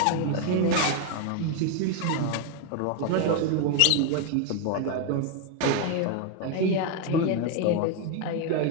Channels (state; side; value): different; both; correlation 0.01